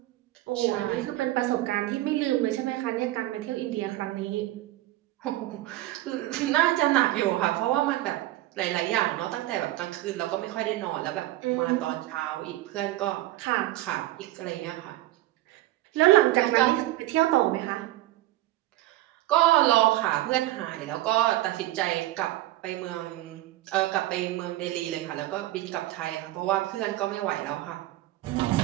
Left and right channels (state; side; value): quieter; left; 16.2 dB